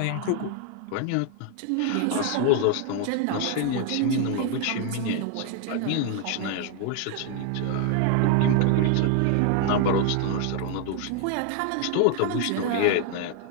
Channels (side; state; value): both; different; correlation 0.01